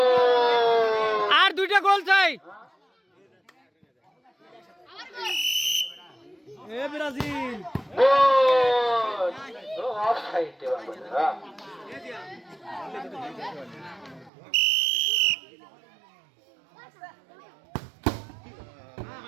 আর 2টা গোল চাই এ ব্রাজিল গোল ও অফসাইড হ্যাঁ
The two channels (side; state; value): left; drops out; at 14.3 s